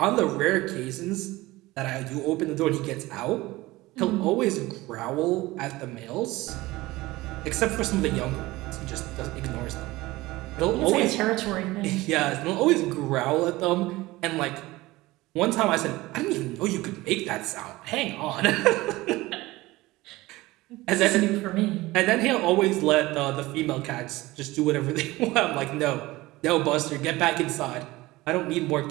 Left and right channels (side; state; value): left; quieter; 19.4 dB